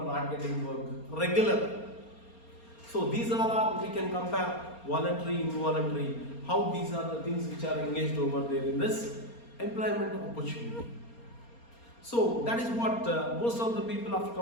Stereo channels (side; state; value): right; late; 4.3 ms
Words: not getting work regular. So these are we can compare voluntary, involuntary, how these are the things which are engaged over there in this employment opportunity. So that is what most of the people after